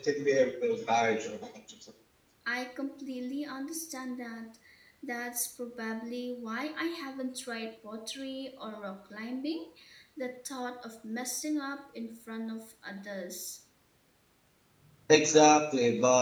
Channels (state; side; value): identical; both; correlation 1.00